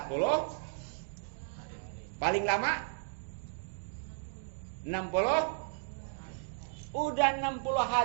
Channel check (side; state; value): left; silent; digital silence